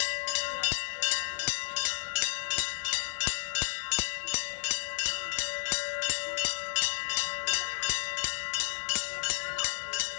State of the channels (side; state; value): right; silent; 56 dB below the other